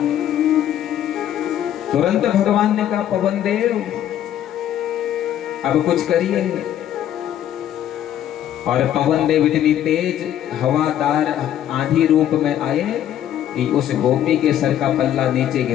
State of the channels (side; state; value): right; quieter; 11.1 dB